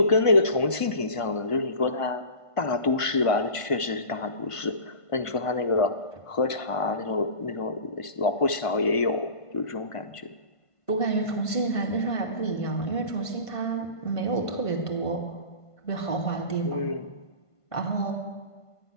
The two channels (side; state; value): right; late; 1.5 ms